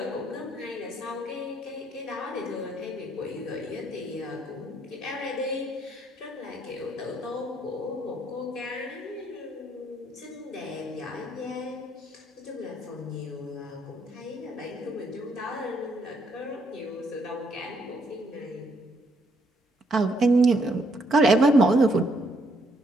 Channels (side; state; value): both; normal; correlation 0.72